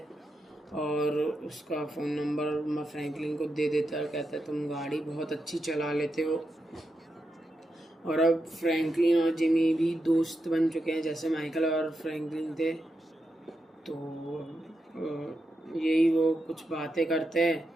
और उसका फ़ोन नंबर मैं फ्रैंकलिन को दे देता है। कहता है तुम गाड़ी बहुत अच्छी चला लेते हो। और अब फ्रैंकलिन और जिमी भी दोस्त बन चुके हैं, जैसे माइकल और फ्रैंकलिन थे। तो यही वो कुछ बातें करते हैं,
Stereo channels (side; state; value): both; normal; correlation 0.86